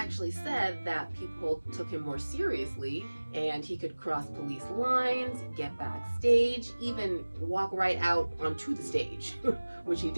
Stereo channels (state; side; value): inverted; both; correlation -1.00